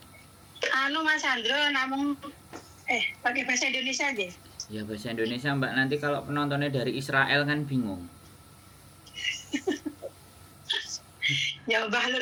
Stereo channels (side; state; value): both; identical; correlation 1.00